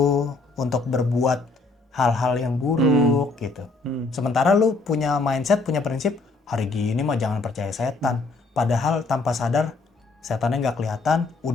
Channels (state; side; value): quieter; right; 3.5 dB